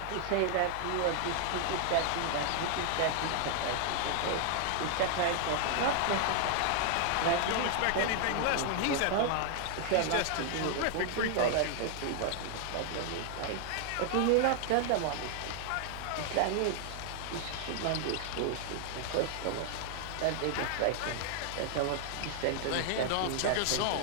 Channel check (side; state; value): both; different; correlation 0.00